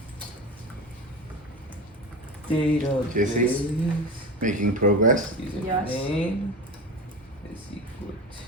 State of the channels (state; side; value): normal; both; correlation 0.27